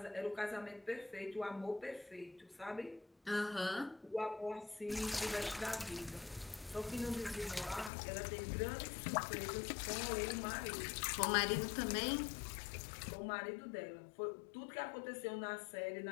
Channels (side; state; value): right; drops out; at 7.9 s